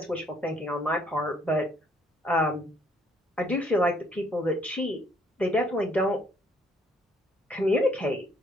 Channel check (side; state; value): both; normal; correlation 0.65